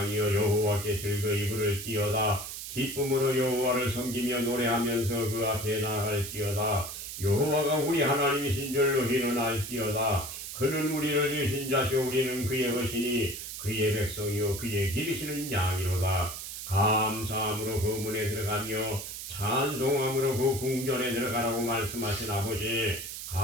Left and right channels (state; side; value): noise; right; hiss, 8 dB below the sound